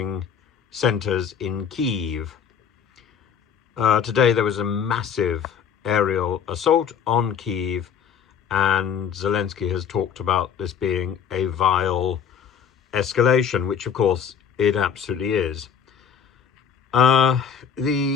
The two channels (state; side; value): quieter; right; 7.7 dB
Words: centers in Kyiv. Today there was a massive aerial assault on Kyiv, and Zelensky has talked about this being a vile escalation, which of course it absolutely is. There